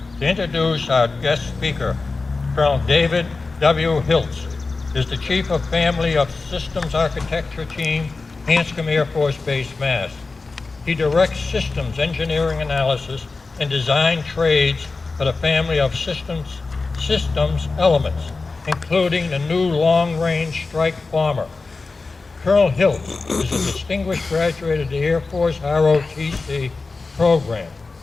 to introduce our guest speaker, Colonel David W. Hiltz, is the Chief of Family of Systems Architecture Team, Hanscom Air Force Base, Mass. He directs systems engineering analysis and design trades for the family of systems elements, including the new long-range strike bomber. Colonel Hiltz is a distinguished graduate of the Air Force ROTC program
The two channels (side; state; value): right; quieter; 3.9 dB